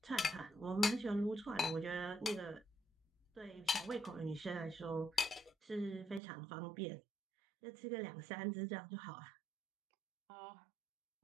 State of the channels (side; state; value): left; drops out; at 6.2 s